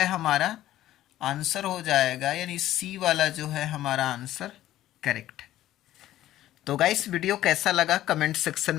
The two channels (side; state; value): right; quieter; 13.8 dB